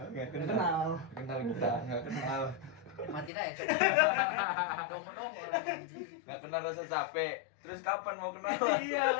Enggak Nggak kenal. Kenal kita, enggak kenal. Mati aja coba. Dong orang anjing. Enggak kenal rasa capek. Terus kapan mau kenal? Iya,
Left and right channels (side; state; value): right; drops out; at 3.3 s